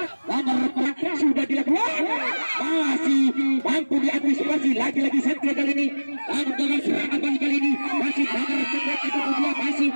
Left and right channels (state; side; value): inverted; both; correlation -1.00